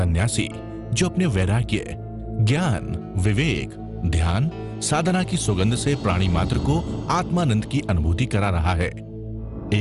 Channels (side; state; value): both; identical; correlation 1.00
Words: जो अपने वैराग्य, ज्ञान, विवेक, ध्यान, साधना की सुगंध से प्राणी मात्र को आत्मानंद की अनुभूति करा रहा है।